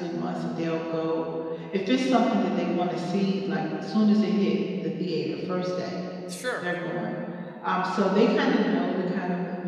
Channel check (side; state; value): both; identical; correlation 1.00